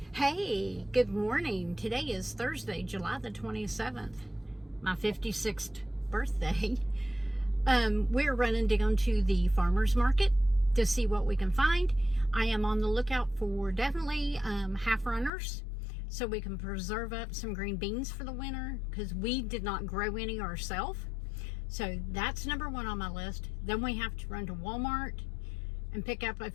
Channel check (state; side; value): drops out; right; at 15.3 s